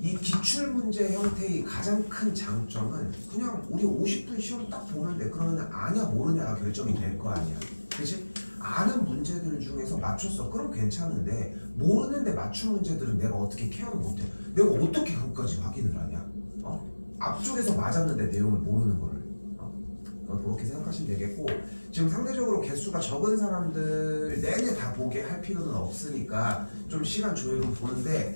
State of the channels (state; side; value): inverted; both; correlation -1.00